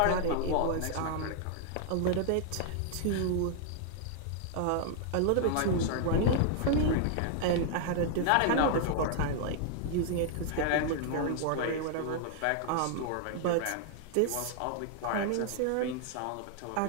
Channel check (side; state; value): both; different; correlation 0.00